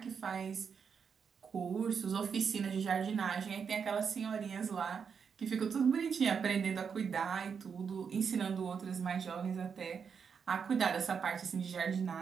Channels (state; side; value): quieter; left; 6.5 dB